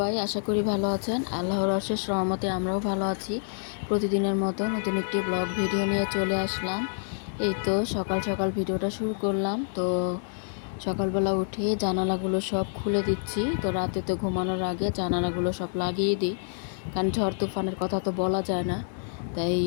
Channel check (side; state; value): right; silent; 60 dB below the other